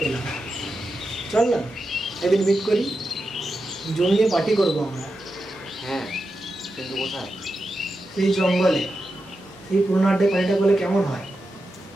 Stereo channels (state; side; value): normal; both; correlation 0.89